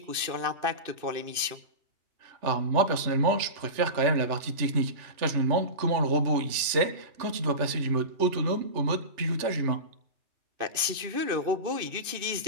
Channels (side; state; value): left; late; 2.6 ms